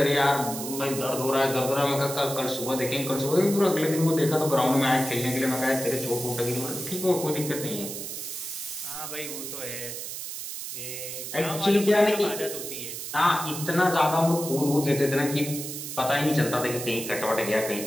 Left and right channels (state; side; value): noise; right; hiss, 7 dB below the sound